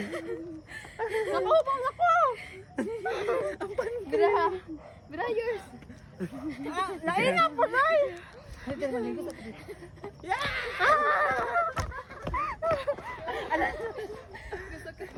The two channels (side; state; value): both; identical; correlation 1.00